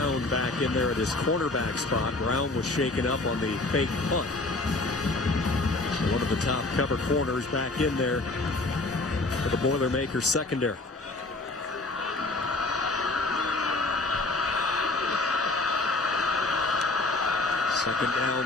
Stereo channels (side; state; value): right; quieter; 3.0 dB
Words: back in there at his cornerback spot. Brown was shaken up on the fake punt. So one of the top cover corners back in there for the Boilermakers secondary. Second